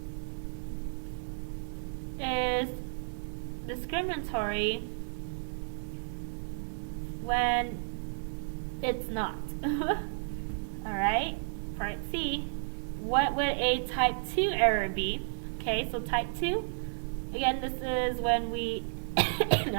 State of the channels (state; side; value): silent; left; 56 dB below the other